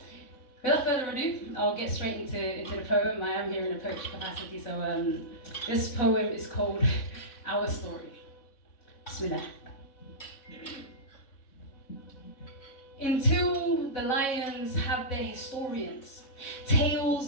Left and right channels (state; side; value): late; right; 3.6 ms